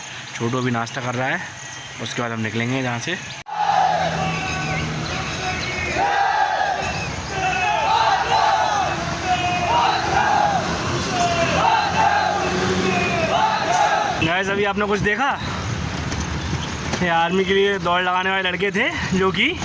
छोटू अभी नाश्ता कर रहा है, उसके बाद हम निकलेंगे यहाँ से। गाइस, अभी आपने कुछ देखा? ये आर्मी के लिए दौड़ लगाने वाले लड़के थे जो कि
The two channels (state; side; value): identical; both; correlation 1.00